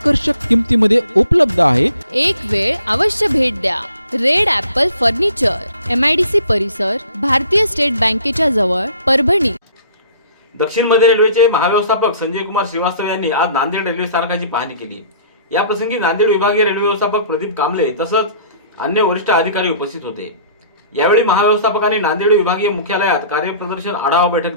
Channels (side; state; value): both; inverted; correlation -0.53